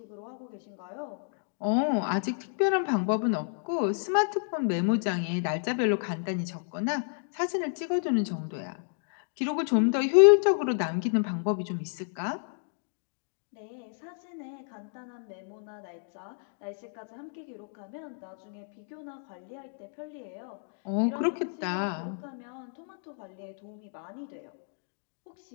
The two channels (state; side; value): silent; right; digital silence